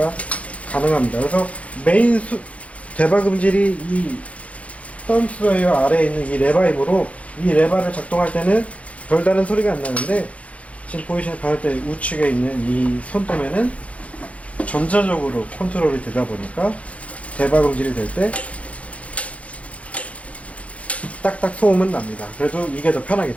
가능합니다. 그래서 메인 되박음질이 이 땀수 다이얼 아래에 있는 이 레버이므로 이 레버를 작동할 때는 별다른 소리가 안 나는데 지금 보이시는 바늘대 우측에 있는 이 손도매는 전자적으로 컨트롤이 되다 보니까 되박음질이 될 때 딱딱 소음은 납니다. 그래도 이게 더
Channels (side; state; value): right; late; 0.065 ms